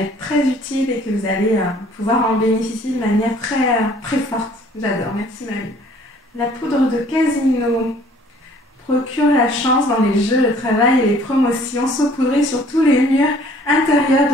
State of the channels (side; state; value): both; normal; correlation 0.56